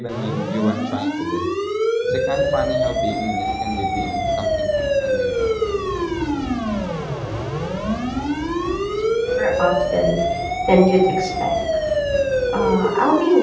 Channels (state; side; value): identical; both; correlation 1.00